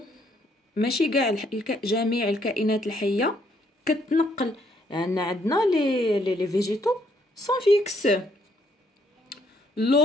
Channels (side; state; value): both; normal; correlation 0.70